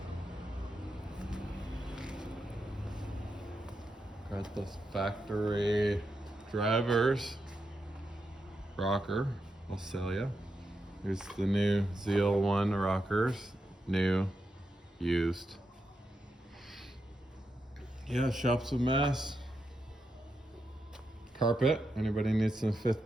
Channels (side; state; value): both; normal; correlation 0.86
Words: this factory drivers rocker. I'll sell you. Here's the new ZL1 rockers. New, used. Yeah, shop's a mess. Carpet. Anybody needs some